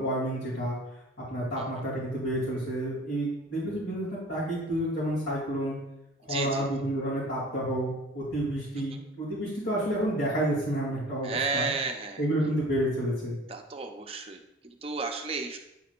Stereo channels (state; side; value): normal; both; correlation 0.44